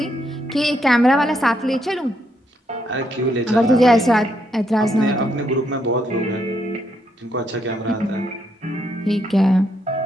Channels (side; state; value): both; normal; correlation 0.77